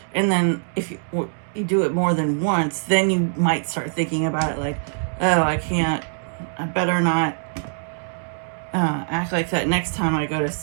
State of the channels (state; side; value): silent; left; digital silence